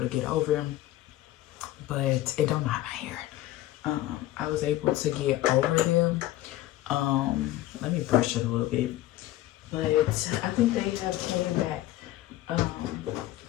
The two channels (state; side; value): quieter; right; 15.3 dB